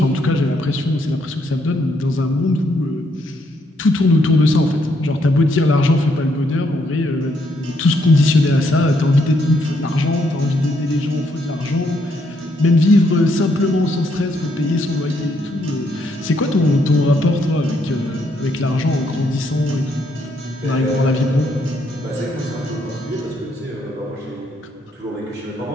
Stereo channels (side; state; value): both; normal; correlation 0.74